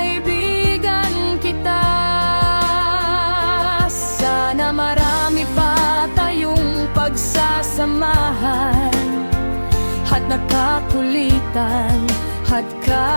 kita. Sana marami pa tayong pagsasamahan at nakakulitan at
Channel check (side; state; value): both; inverted; correlation -1.00